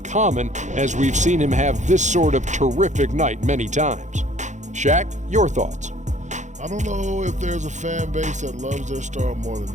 as we've seen him have this sort of terrific night many times. Shaq, your thoughts? I don't know if there's a fan base that loves their star more than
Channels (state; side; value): late; left; 0.35 ms